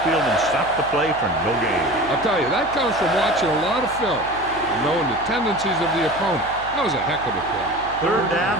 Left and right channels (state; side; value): noise; right; hum, 17 dB below the sound